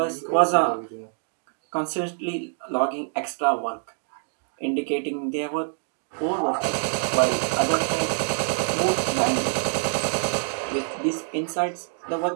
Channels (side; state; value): left; silent; 61 dB below the other